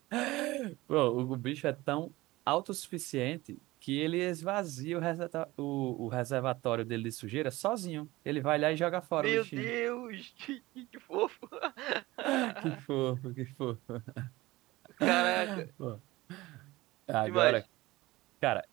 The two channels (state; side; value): quieter; left; 19.4 dB